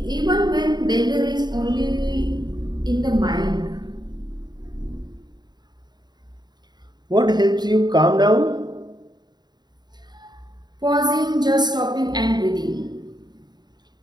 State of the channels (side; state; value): left; late; 0.20 ms